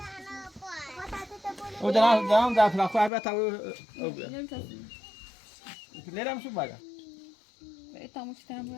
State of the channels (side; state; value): right; drops out; at 3.1 s